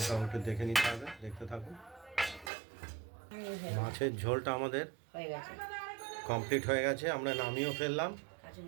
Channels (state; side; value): drops out; left; at 2.5 s